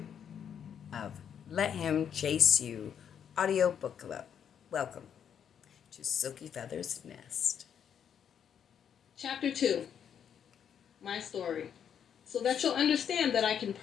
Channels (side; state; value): right; quieter; 8.4 dB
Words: of Let Him Chase You audiobook club. Welcome to Silky Feather's Nest. Chapter 2, My Story. So that you'll understand that I can